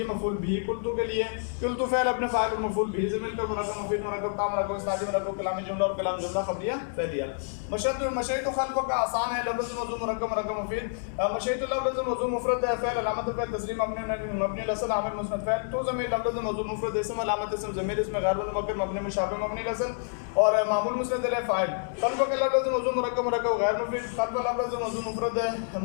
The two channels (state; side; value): silent; right; digital silence